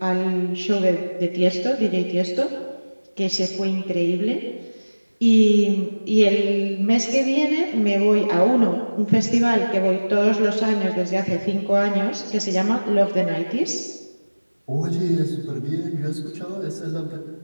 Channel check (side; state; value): both; inverted; correlation -1.00